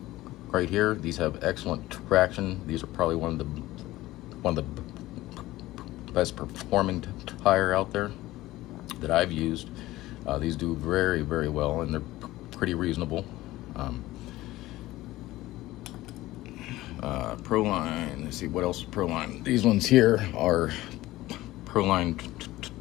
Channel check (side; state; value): right; quieter; 17.2 dB